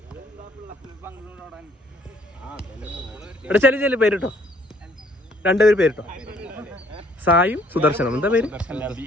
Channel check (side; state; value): both; normal; correlation 0.62